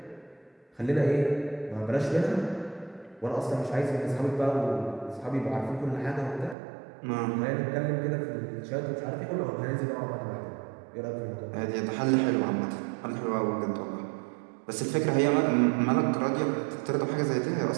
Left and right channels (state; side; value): drops out; left; at 6.6 s